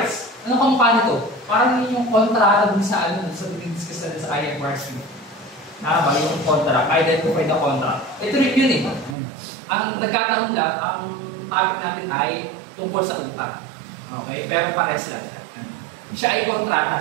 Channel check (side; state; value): left; drops out; at 9.2 s